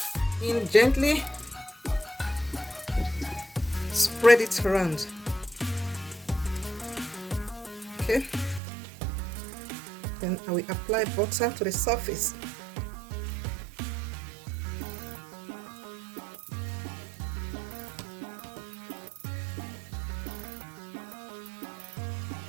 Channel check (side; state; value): left; drops out; at 8.6 s